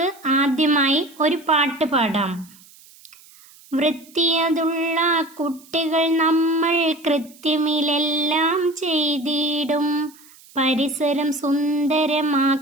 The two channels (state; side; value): noise; right; hiss, 25 dB below the sound